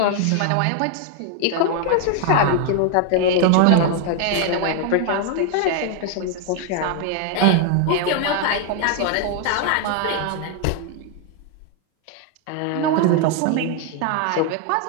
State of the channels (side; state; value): both; different; correlation 0.00